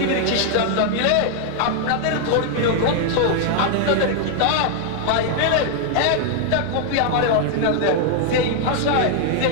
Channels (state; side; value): different; both; correlation 0.00